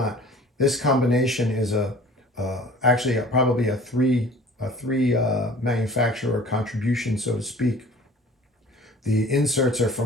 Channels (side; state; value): both; normal; correlation 0.45